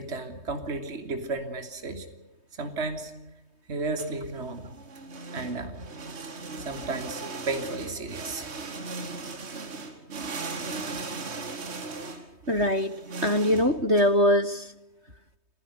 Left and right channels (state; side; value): late; left; 3.2 ms